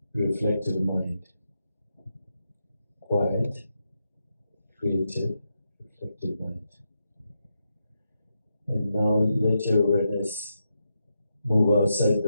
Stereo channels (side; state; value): both; inverted; correlation -0.85